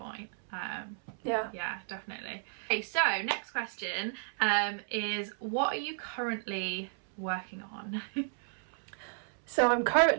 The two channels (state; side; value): silent; left; 56 dB below the other